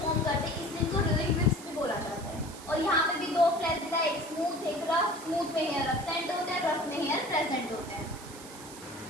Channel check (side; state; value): right; noise; hiss, 16 dB below the sound